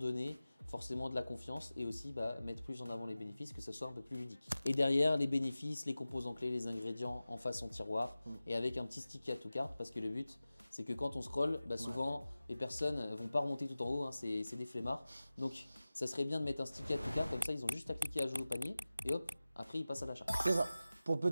forcément de la confiance et aussi mettre plus en avant les bénéfices, que ce soit un peu plus ludique. Et derrière, les bénéfices, les composants clés, les ingrédients en façon tiroir et avec un petit stick à tout carte parce que le but, c'est que quand on scrolle, souvent les personnes ne vont pas remonter tout en haut, hein, c'est des flemmards. Donc ça serait bien de mettre un stick à tout carte, comme ça ils ont juste à cliquer à jouer au panier et hop, après ils passent à l'achat. C'est ça. Pour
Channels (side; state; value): both; inverted; correlation -0.97